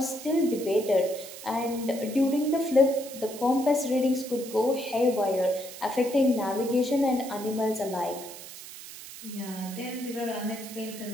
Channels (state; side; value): noise; right; hiss, 13 dB below the sound